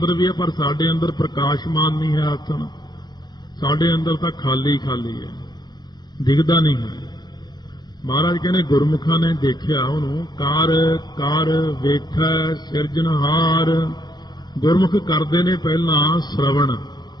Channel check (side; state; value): right; late; 0.20 ms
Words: ਵੀ ਹੈ, ਪਰ ਸਾਡੇ ਅੰਦਰ ਪ੍ਰਕਾਸ਼ਮਾਨ ਨਹੀਂ ਹੈ ਆਸਣ। ਸਾਡੇ ਅੰਦਰ ਤਾਂ ਖਾਲੀ ਖਾਲੀ ਹੈ, ਦਿਖਦਾ ਨਹੀਂ ਹੈ। ਮਹਾਰਾਜ ਕਹਿੰਦੇ ਗੁਰਮੁਖਾਂ ਨੇ ਦੇਖਿਆ ਉਹਨੂੰ। ਕਰ ਕਰ ਵੇਖੈ ਸਿਰਜਣਹਾਰ। ਗੁਰਮੁਖ ਕਰਦੇ ਨੇ ਪਹਿਲਾਂ ਸ਼ਰਵਣ,